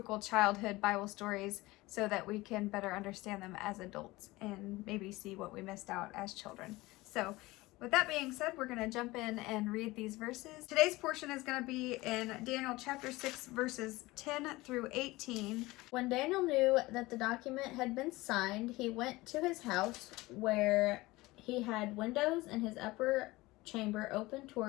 childhood Bible stories so that we can better understand them as adults and maybe see what we missed out as children. So with that being said, we're going to jump in and read these verses. Today's portion is going to be in Daniel chapter 6 verses 10 through 18. When Daniel knew that the document had been signed, he went to his house where he had windows in his upper chamber open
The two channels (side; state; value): right; quieter; 20.3 dB